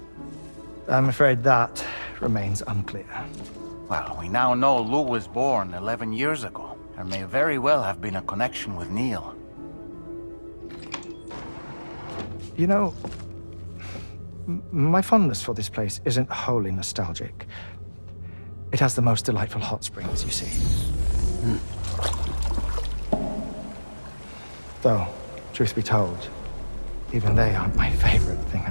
I'm afraid that remains unclear. Well, we now know Lou was born 11 years ago. There may very well have been a connection with Neil. You know, my fondness for this place isn't wholly nostalgic. It has the most delightful hot springs, you see. Though, truth be told, even they aren't my favorite thing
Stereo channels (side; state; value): both; inverted; correlation -1.00